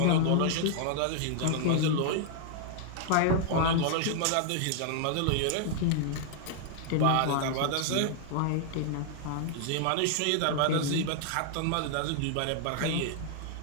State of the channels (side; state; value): both; different; correlation 0.00